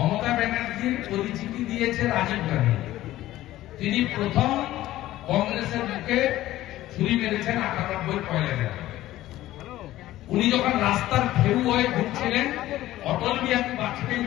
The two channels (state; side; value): quieter; right; 15.1 dB